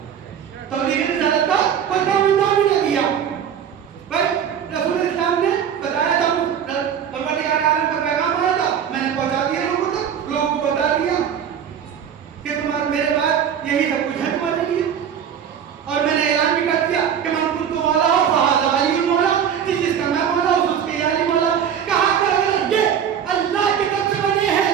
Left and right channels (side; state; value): left; quieter; 8.4 dB